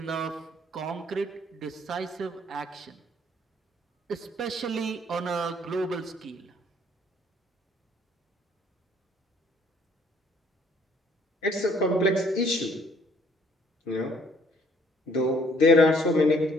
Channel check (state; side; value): normal; both; correlation 0.62